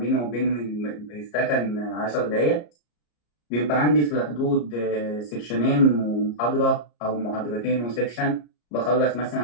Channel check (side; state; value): right; late; 34 ms